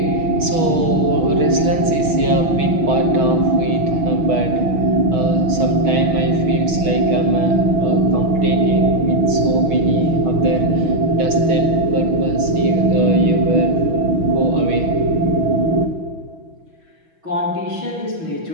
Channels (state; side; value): late; left; 6.1 ms